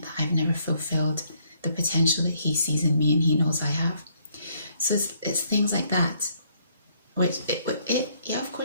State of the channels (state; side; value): inverted; both; correlation -0.69